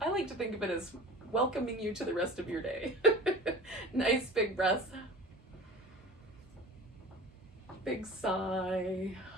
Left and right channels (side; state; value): both; normal; correlation 0.39